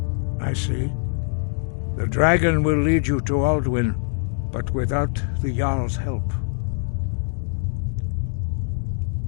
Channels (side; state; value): right; silent; digital silence